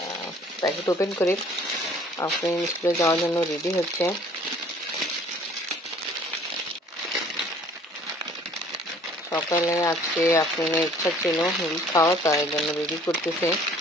প্যাকেট ওপেন করি। আফরিন স্কুলে যাওয়ার জন্য রেডি হচ্ছে। সকালে আজকে আফরিনের ইচ্ছা ছিল নুডলস খাওয়া, তাই জন্য রেডি করতেছে।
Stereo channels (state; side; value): normal; both; correlation 0.55